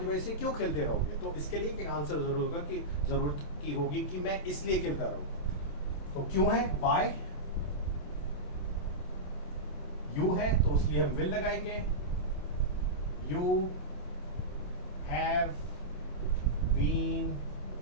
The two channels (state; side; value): late; right; 27 ms